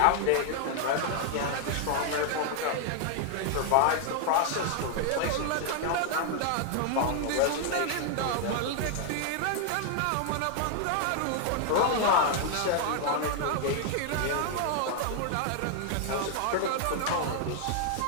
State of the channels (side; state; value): both; different; correlation 0.00